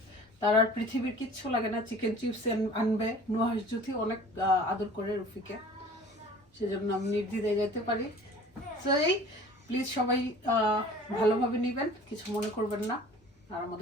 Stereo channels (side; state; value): both; normal; correlation 0.46